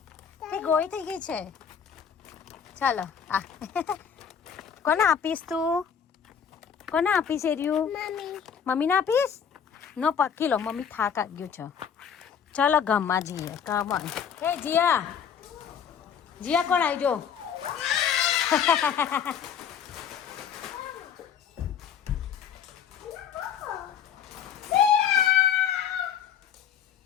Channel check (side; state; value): right; quieter; 7.8 dB